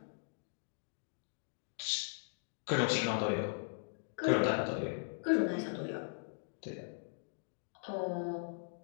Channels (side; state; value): right; silent; digital silence